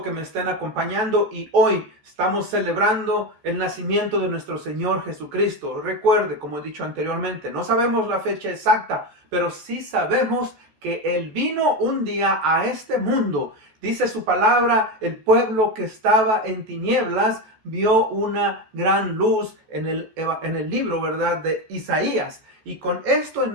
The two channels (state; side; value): late; left; 14 ms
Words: que me estén acompañando y hoy estamos celebrando el nacimiento de nuestro Señor Jesucristo. Recuerde, como he dicho anteriormente, no sabemos la fecha exacta, pero sí sabemos que Él vino un día a este mundo. Dice su palabra, el pueblo que estaba en tinieblas vio una gran luz en el libro, ¿verdad?, de Isaías. Y con esto en